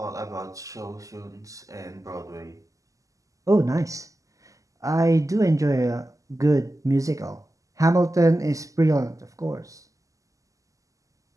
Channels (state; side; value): late; left; 0.16 ms